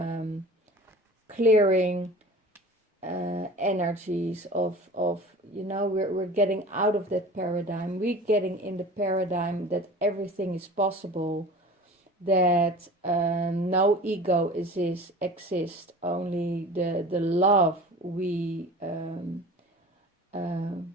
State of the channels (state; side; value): normal; both; correlation 0.40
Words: clearing energies, of we're getting out of that paradigm. We're getting in the paradigm that everything is possible, that no ego exists, only the love we